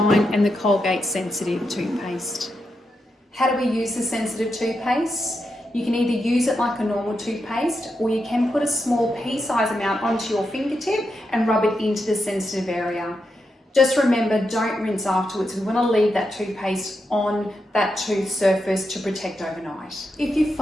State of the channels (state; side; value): normal; both; correlation 0.85